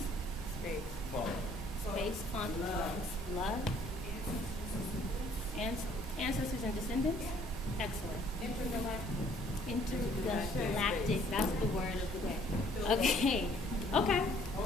Space. Space, funk, love. Ancestors and descendants? Excellent. Intergalactic. That's the word of the day. Okay. Okay.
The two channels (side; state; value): both; normal; correlation 0.60